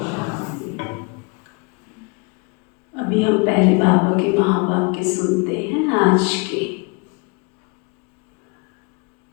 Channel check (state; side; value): quieter; right; 30.5 dB